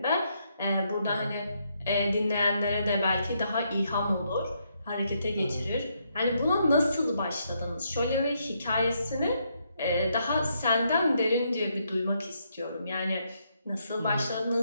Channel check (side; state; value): both; inverted; correlation -0.76